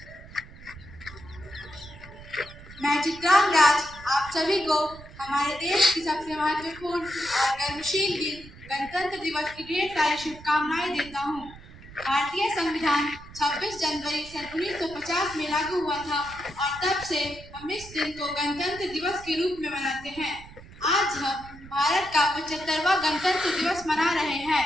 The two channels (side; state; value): right; noise; rumble, 18 dB below the sound